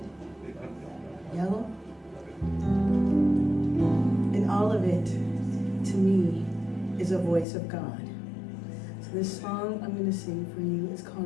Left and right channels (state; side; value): drops out; right; at 7.5 s